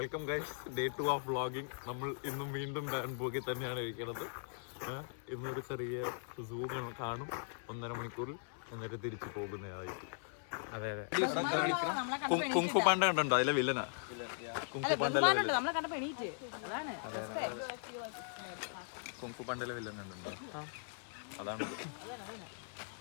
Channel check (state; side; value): silent; right; 52 dB below the other